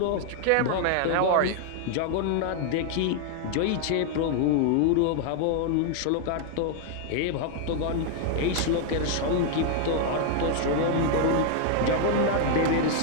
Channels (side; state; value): both; different; correlation 0.00